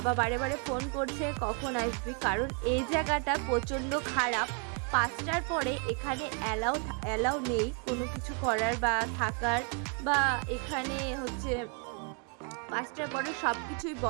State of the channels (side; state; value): left; quieter; 38.0 dB